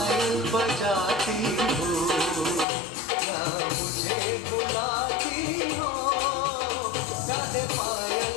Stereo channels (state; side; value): drops out; right; at 2.7 s